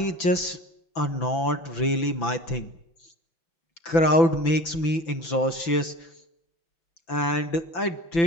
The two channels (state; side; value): late; right; 6.0 ms